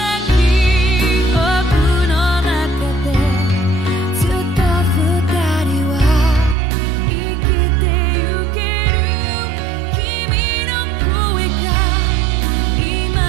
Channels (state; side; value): drops out; left; at 6.6 s